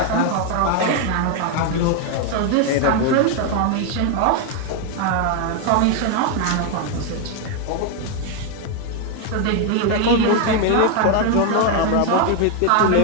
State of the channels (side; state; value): both; different; correlation 0.01